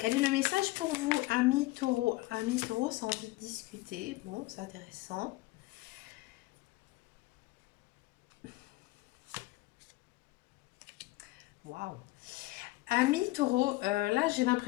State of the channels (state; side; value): quieter; right; 20.4 dB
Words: est le message pour vous, amis taureau? Amis taureau, c'est envie de discuter. Bon, c'est intéressant. Waouh! Amis taureau, là j'ai